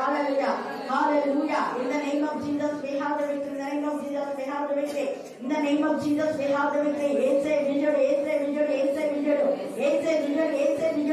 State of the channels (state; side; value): identical; both; correlation 1.00